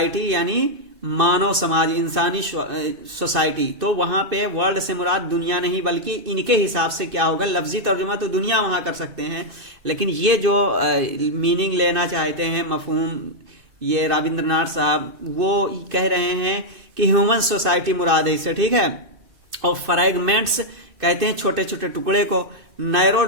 यानी मानव समाज, इंसानी सोसाइटी। तो वहां पे वर्ल्ड से मुराद दुनिया नहीं, बल्कि इनके हिसाब से क्या होगा, लफ्जी तर्जुमा तो दुनिया वहां कर सकते हैं, लेकिन ये जो मीनिंग लेना चाहते हैं, मफहूम, ये रविंद्रनाथ साहब वो कह रहे हैं कि ह्यूमन सोसाइटी मुराद है इससे, ठीक है। और फ्रैगमेंट्स कहते हैं छोटे छोटे टुकड़े को। नैरो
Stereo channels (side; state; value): left; late; 2.6 ms